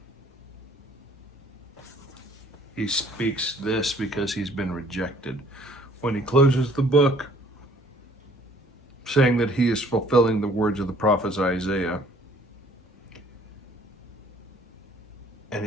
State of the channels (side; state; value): both; normal; correlation 0.57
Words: He speaks this because he's been rejected. When he closes the book, saying that he is fulfilling the words of the prophet Isaiah, and